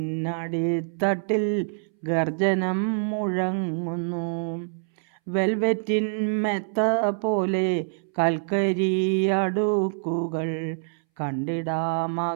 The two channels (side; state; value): left; silent; 61 dB below the other